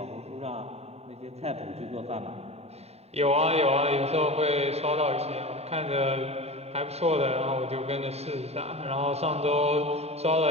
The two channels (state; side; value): late; left; 0.30 ms